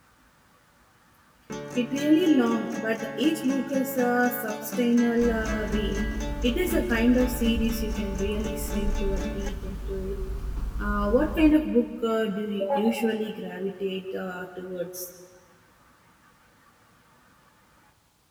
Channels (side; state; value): both; identical; correlation 1.00